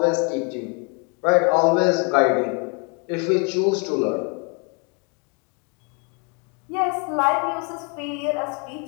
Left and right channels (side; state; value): right; quieter; 33.7 dB